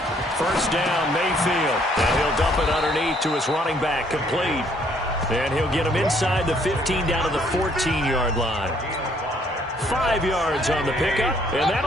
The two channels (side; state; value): both; normal; correlation 0.65